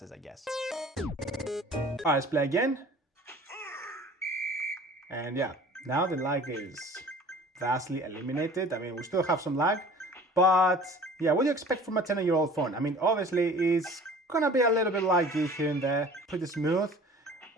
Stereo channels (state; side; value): normal; both; correlation 0.46